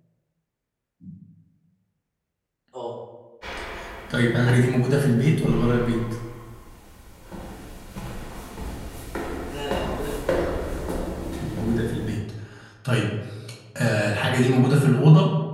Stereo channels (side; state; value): both; identical; correlation 1.00